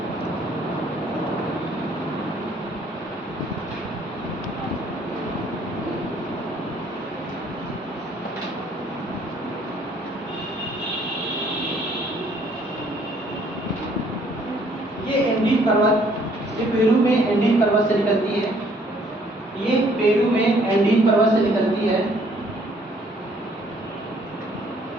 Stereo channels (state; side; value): normal; both; correlation 0.62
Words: ये एंडीज पर्वत, ये पेरू में एंडीज पर्वत से निकलती है। ये पेरू में एंडीज पर्वत से निकलती है।